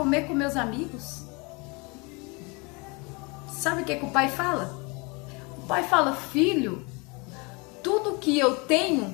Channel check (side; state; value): right; quieter; 29.0 dB